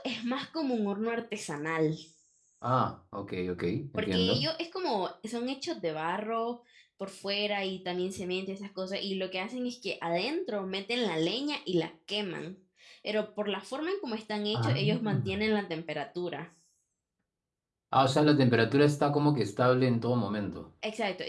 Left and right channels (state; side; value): identical; both; correlation 1.00